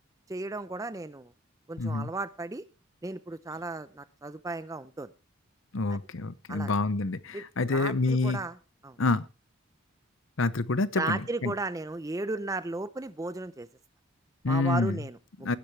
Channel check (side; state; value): both; normal; correlation 0.48